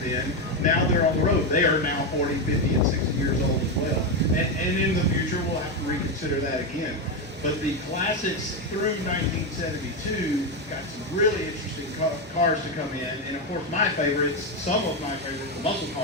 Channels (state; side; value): normal; both; correlation 0.09